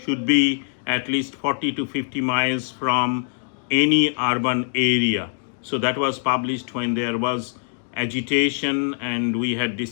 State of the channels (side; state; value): right; silent; digital silence